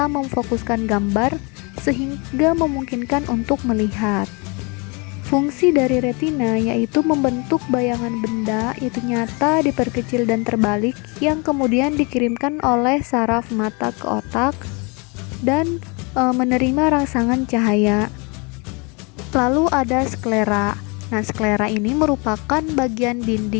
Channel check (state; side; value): quieter; right; 30.7 dB